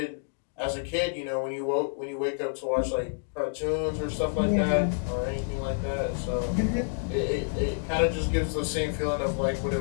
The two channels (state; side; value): silent; right; digital silence